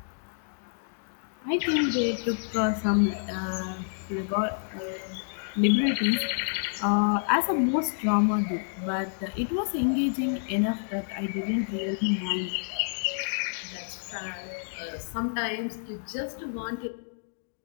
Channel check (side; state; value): right; silent; digital silence